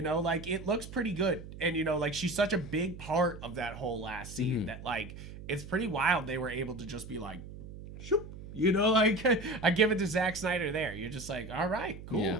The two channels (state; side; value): noise; right; hum, 13 dB below the sound